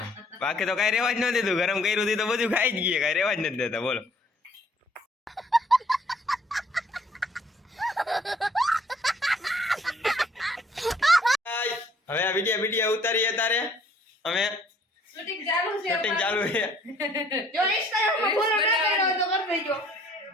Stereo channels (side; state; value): both; normal; correlation 0.60